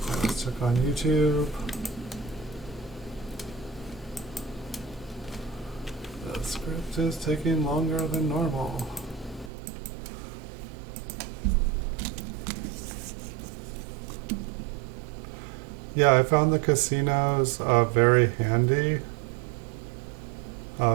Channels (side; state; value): left; drops out; at 9.5 s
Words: Let's check on YouTube. The script is taking longer than normal. Yeah, I found the casinos very handy.